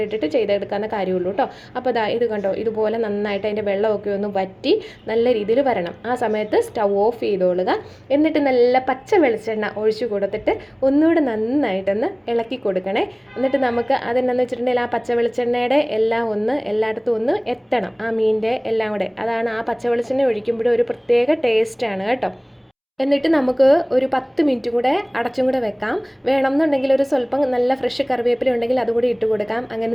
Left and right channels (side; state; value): both; identical; correlation 1.00